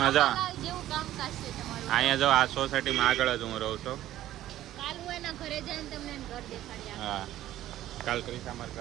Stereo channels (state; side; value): quieter; left; 13.6 dB